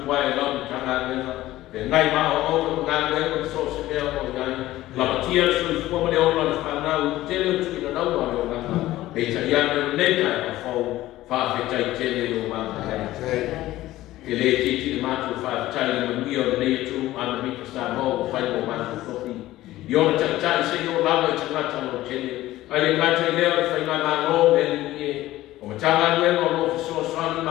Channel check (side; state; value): right; quieter; 15.9 dB